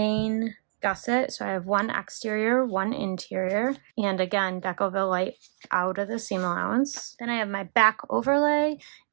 gusset. So I have one exterior, one interior, and again, Decoville light out of the seam allowance. Then I have my back overlay,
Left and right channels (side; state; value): left; silent; digital silence